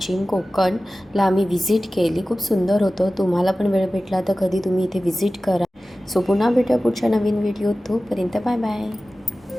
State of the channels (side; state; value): both; normal; correlation 0.96